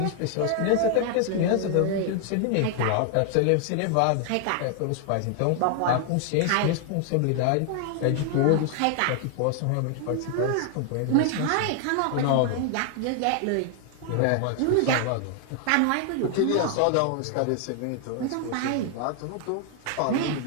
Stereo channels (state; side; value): different; both; correlation 0.00